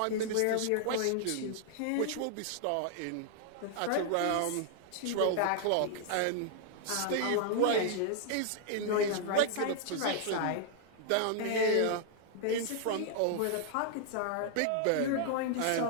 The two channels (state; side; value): different; both; correlation -0.01